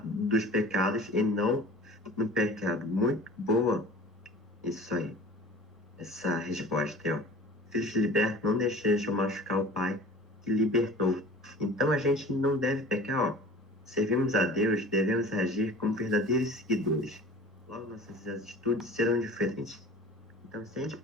dos pecados e não no pecado. Muito boa isso aí. Essa resposta aí, ó. Filhos libertos não deixam machucar o Pai que libertou. Então a gente não deve pecar, ó. Servimos a Deus, devemos agir como verdadeiros seguidores. Logo nossas atitudes serão diferentes. Então se a gente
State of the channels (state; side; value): normal; both; correlation 0.42